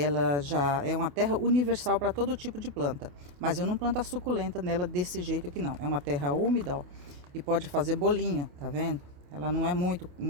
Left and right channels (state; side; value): late; left; 28 ms